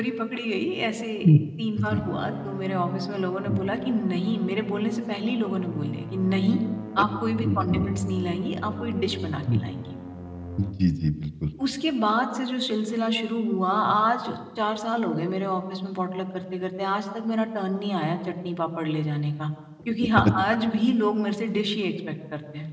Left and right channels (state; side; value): identical; both; correlation 1.00